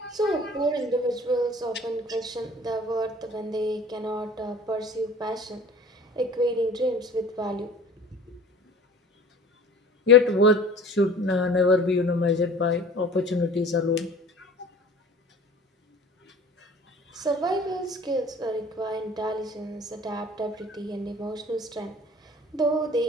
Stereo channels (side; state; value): both; normal; correlation 0.45